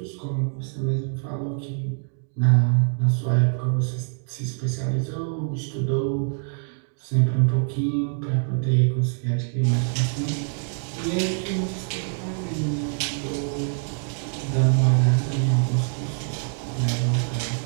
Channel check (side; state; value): left; silent; 62 dB below the other